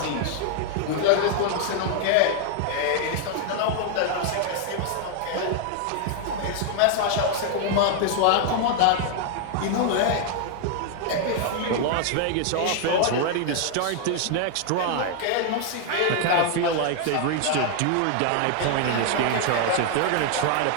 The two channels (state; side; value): different; both; correlation 0.00